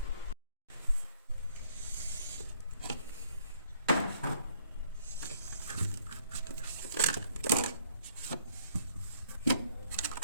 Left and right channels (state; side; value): inverted; both; correlation -0.64